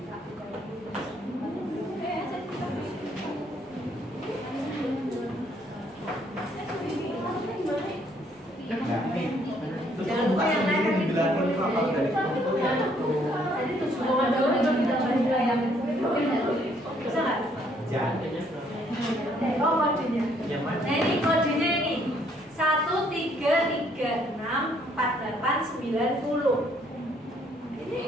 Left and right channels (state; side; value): normal; both; correlation 0.66